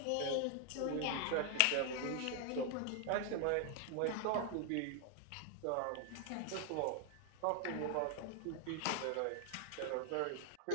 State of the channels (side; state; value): both; different; correlation 0.00